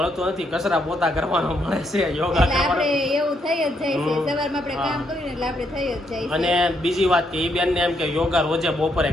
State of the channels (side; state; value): both; normal; correlation 0.75